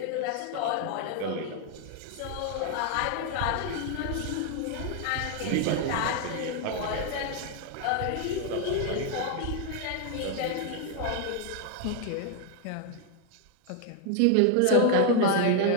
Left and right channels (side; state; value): both; different; correlation 0.00